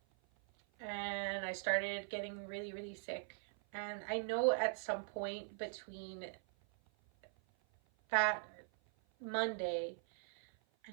and I started getting really really sick. And I know at some point between that Monday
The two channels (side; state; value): left; silent; 50 dB below the other